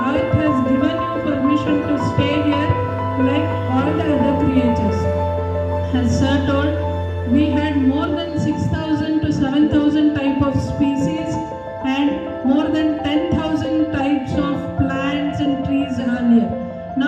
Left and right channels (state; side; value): identical; both; correlation 1.00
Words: Earth has given you permission to stay here like all the other creatures. As Sir told, we had more than 6,000 to 7,000 type of species and more than 10,000 types of plants and trees earlier.